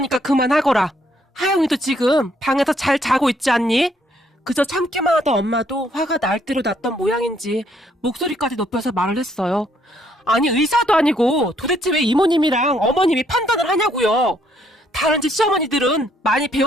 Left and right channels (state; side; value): normal; both; correlation 0.69